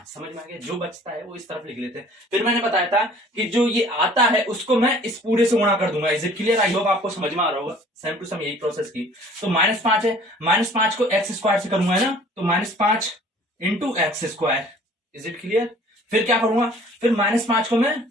समझ में आ गया, जो बचता है वो इस तरफ लिख लेते हैं। फिर मैंने बताया था कि जो ये आता है उसको मैं इस पूरे से गुणा कर दूंगा, is it clear. I hope आपको समझ में आ रहा होगा, सेम टू सेम यही प्रोसेस की। तो -5 है, -5 को x² से करूंगा है ना, तो -5 into x², is it clear. फिर क्या करूंगा, फिर -5 को मैं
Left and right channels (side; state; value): both; normal; correlation 0.52